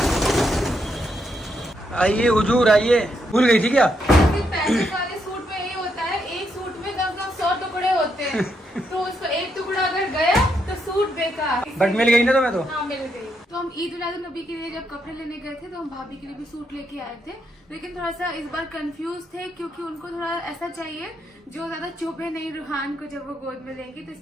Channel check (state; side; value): normal; both; correlation 0.79